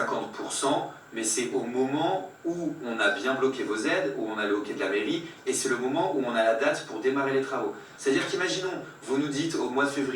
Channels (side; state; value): both; identical; correlation 1.00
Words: mais c'est au moment où on a bien bloqué vos aides, où on a le OK de la mairie, et c'est le moment où on a la date pour démarrer les travaux. C'est-à-dire qu'imaginons, vous nous dites au mois de